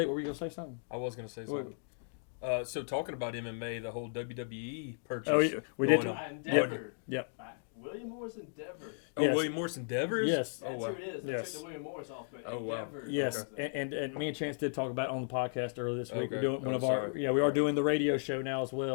What were you gonna say something? I was going to say something. So talking about MMA, the whole WWE purchase. Oh, we did. Endeavor. Yep. William Morris Endeavor. Oh, Yes. William Morris Endeavors? Yes. Oh, That's wow. who it is. They Yes. took the William Morris off. But Oh, wow. Endeavor. Yes, Okay. and me and Chance did talk about it on the podcast earlier this week. Okay. We're doing one Oh, of our sorry. we are doing the radio show now as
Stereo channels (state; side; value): silent; right; digital silence